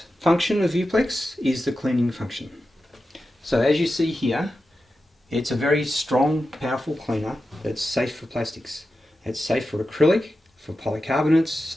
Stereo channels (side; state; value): both; normal; correlation 0.91